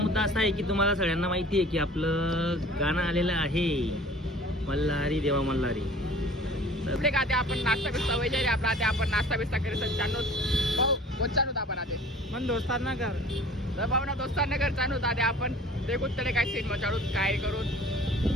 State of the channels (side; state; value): both; normal; correlation 0.47